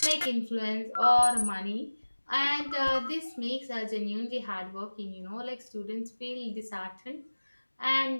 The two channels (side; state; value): both; inverted; correlation -1.00